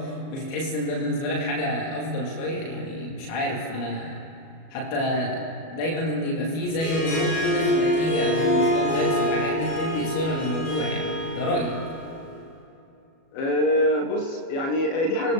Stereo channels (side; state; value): right; late; 37 ms